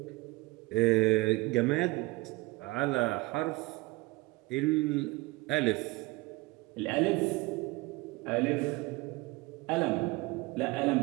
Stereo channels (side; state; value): left; quieter; 22.4 dB